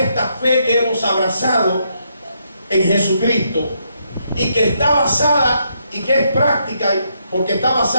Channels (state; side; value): inverted; both; correlation -0.77